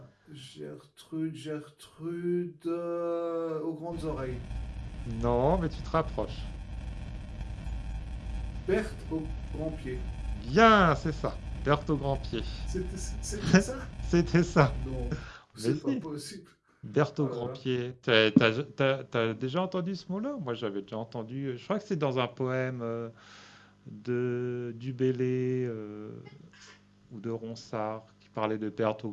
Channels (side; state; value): both; identical; correlation 1.00